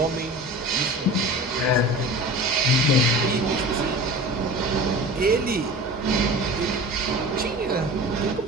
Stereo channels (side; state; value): both; normal; correlation 0.36